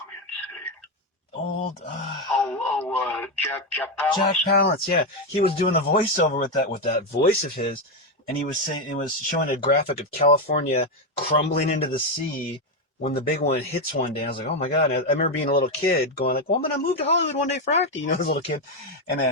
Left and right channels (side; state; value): both; normal; correlation 0.07